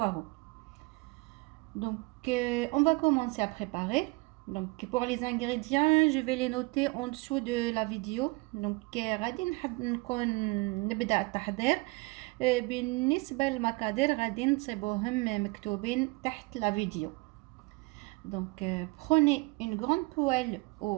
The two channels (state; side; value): quieter; left; 25.8 dB